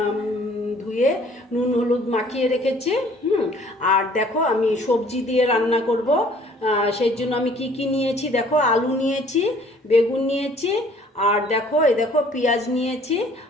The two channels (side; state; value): both; normal; correlation 0.56